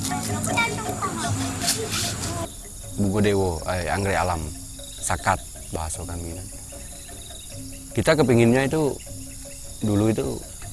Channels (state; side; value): identical; both; correlation 1.00